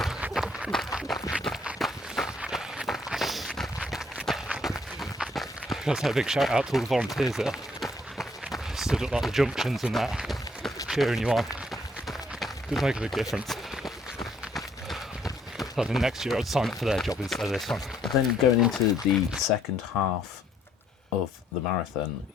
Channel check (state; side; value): normal; both; correlation 0.67